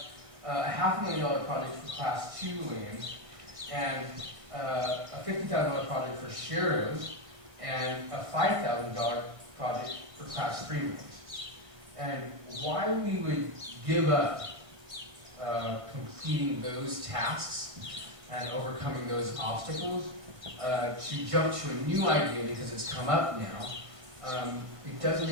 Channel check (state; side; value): late; left; 1.6 ms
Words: a $500,000 project for class 2 lanes, and a $50,000 project for Sharrows, and a $5,000 project for class 3 lanes. And why we would give up completing those tasks and overcoming those obstacles to jump to a new idea because it's come up now, it doesn't